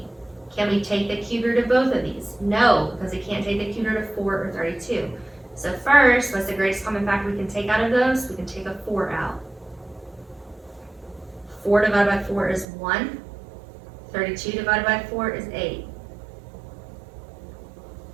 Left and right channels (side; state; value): left; drops out; at 12.7 s